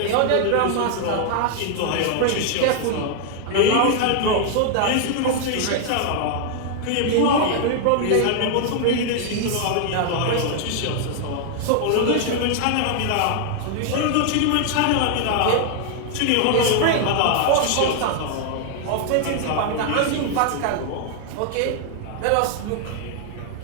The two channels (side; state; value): both; different; correlation 0.00